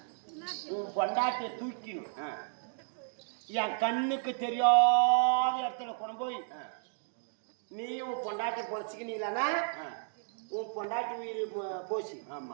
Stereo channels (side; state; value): left; silent; digital silence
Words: உன் பொண்டாட்டிய தூக்கிடும். என் கண்ணுக்கு தெரியாத இடத்துல கொண்டு போய் நீ உன் பொண்டாட்டி பொழைச்சிக்கினீங்களா உன் பொண்டாட்டி உயிர் போச்சு.